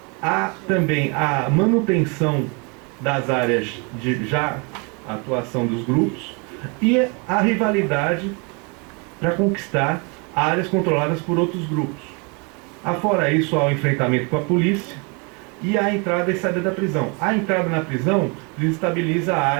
Há também a manutenção das áreas de já atuação dos grupos, e a rivalidade para conquistar áreas controladas por outros grupos. Afora isso, há o enfrentamento com a polícia e a entrada e saída da prisão. A entrada na prisão desestabiliza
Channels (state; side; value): quieter; left; 32.4 dB